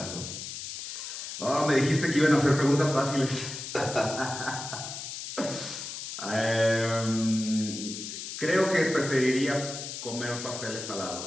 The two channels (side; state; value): left; noise; hiss, 8 dB below the sound